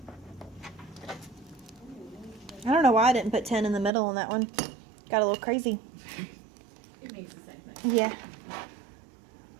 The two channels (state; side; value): drops out; left; at 3.9 s